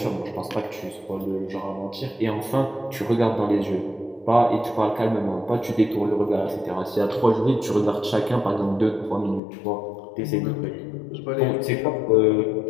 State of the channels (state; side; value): drops out; right; at 9.4 s